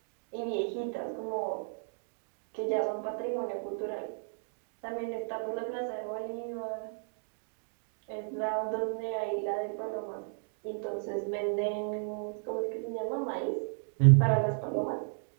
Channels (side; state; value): left; silent; digital silence